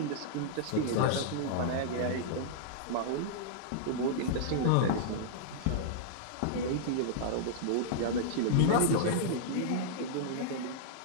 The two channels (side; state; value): both; different; correlation -0.02